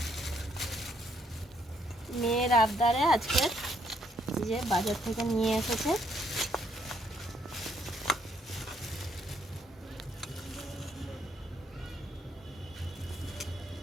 মেয়ের আবদারে আজকে যে বাজার থেকে নিয়ে এসেছে।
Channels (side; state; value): both; normal; correlation 0.70